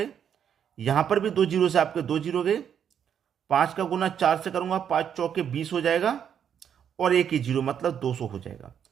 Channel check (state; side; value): quieter; left; 8.5 dB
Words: यहां पर भी 2 जीरो से आपके 2 जीरो गए, 5 का गुना 4 से करूंगा, 5 चौके 20 हो जाएगा और एक ही जीरो मतलब 200 हो जाएगा।